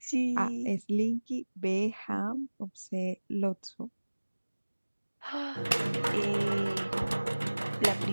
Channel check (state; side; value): inverted; both; correlation -1.00